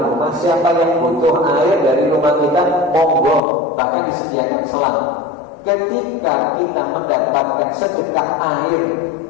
rumah, siapa yang butuh air dari rumah kita, monggo, bahkan disediakan selang. Ketika kita mendapatkan sedekah air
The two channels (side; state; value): right; drops out; at 3.4 s